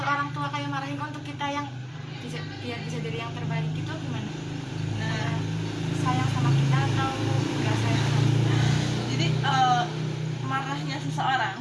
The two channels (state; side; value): identical; both; correlation 1.00